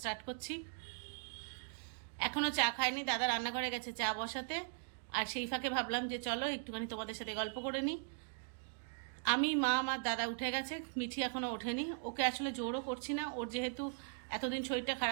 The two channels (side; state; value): left; silent; digital silence